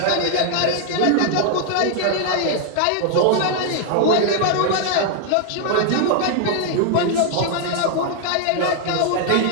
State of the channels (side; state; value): both; different; correlation 0.00